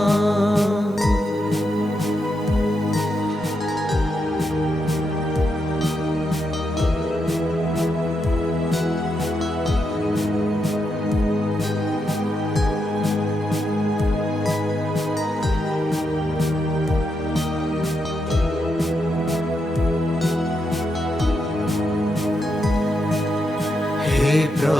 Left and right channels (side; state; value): both; normal; correlation 0.83